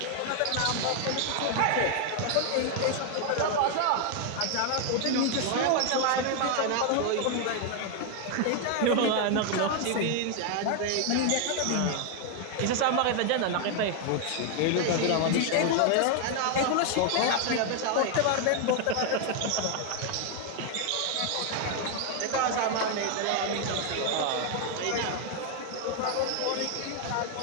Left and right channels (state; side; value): different; both; correlation 0.00